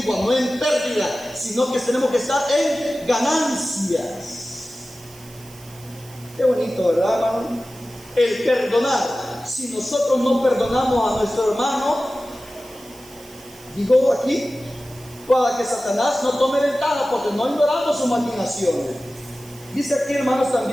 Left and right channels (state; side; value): noise; right; hiss, 21 dB below the sound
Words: no en pérdida, sino que tenemos que estar en ganancias. Qué bonito, ¿verdad, hermano? El perdonar. Si nosotros no perdonamos a nuestro hermano, digo aquí, para que Satanás no tome ventaja, porque no ignoramos sus maquinaciones. Dice aquí, hermanos,